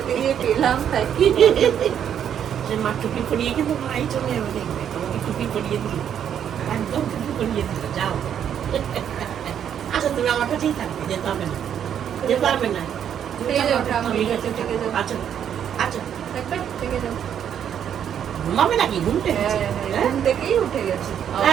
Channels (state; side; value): quieter; left; 9.1 dB